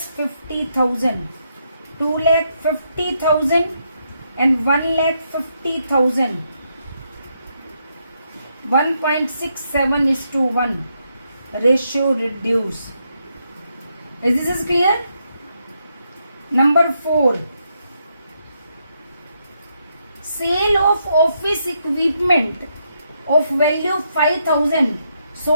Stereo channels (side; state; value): both; inverted; correlation -0.79